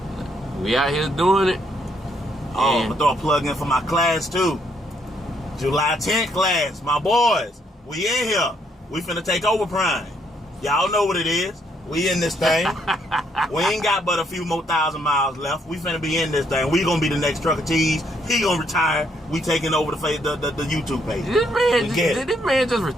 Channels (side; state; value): both; normal; correlation 0.72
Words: we out here doing it. Oh, I'm gonna throw a plug in for my class too. July 10th class, my boys. We in here. We finna take over Prime. Y'all know what it is. We in this thing. We ain't got but a few more 1,000 miles left. We finna be in this thing. We gonna be the next Trucker T's. He gonna retire. We taking over the YouTube page. Did this man just